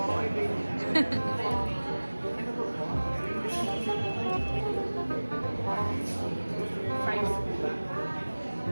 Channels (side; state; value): both; inverted; correlation -1.00